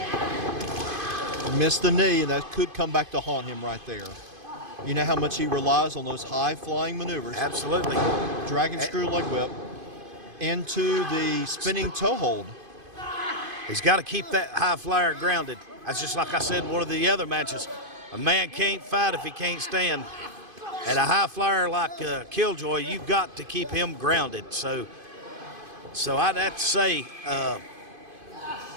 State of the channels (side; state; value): left; late; 2.5 ms